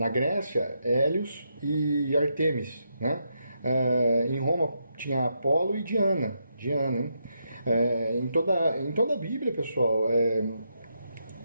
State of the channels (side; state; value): both; inverted; correlation -0.81